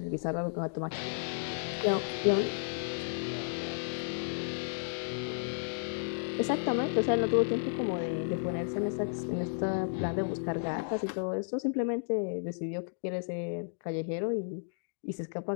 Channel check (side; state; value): right; silent; digital silence